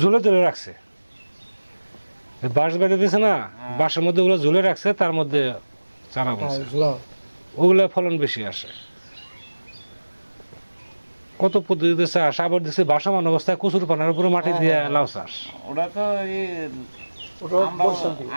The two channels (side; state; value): both; inverted; correlation -1.00